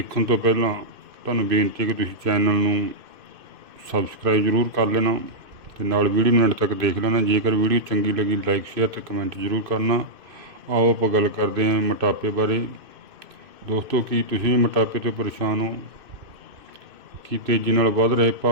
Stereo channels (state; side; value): late; left; 2.5 ms